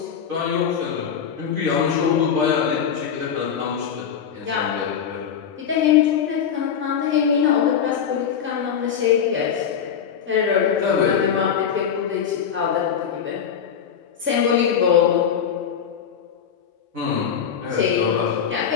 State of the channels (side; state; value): right; quieter; 7.8 dB